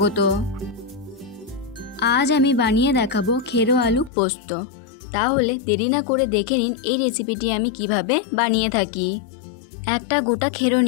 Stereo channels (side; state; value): right; drops out; at 4.1 s